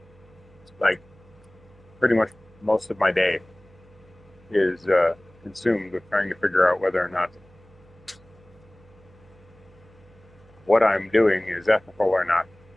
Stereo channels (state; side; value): noise; right; hum, 26 dB below the sound